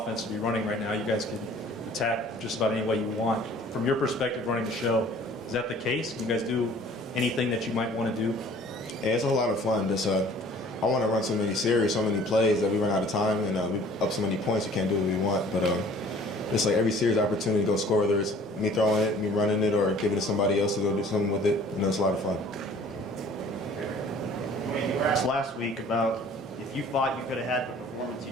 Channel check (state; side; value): normal; both; correlation 0.51